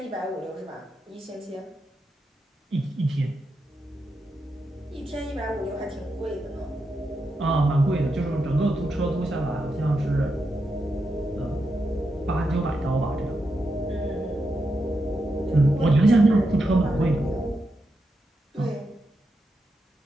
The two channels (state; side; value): normal; both; correlation 0.86